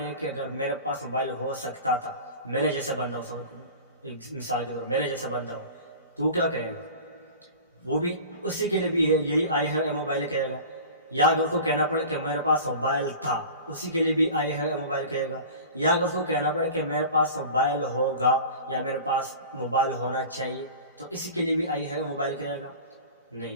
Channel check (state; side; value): inverted; both; correlation -0.38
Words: कि अगर मेरे पास मोबाइल हो सकता था, मेरे जैसा बंदा हो, एक मिसाल के तौर मेरे जैसा बंदा हो, तो क्या कहेगा? वो भी उसी के लिए भी है यही आई हैव ए मोबाइल कहेगा। या अगर उसको कहना पड़े कि मेरे पास मोबाइल था, उसी के लिए भी आई हैव ए मोबाइल कहेगा। या अगर उसको कहना पड़े कि मेरे पास मोबाइल होगा या मेरे पास मोबाइल होना चाहिए, तो इसी के लिए भी आई हैव मोबाइल कहेगा?